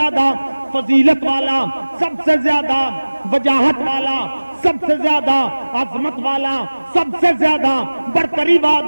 فضیلت والا، سب سے زیادہ وجاہت والا، سب سے زیادہ عظمت والا، سب سے زیادہ برتری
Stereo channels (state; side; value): inverted; both; correlation -1.00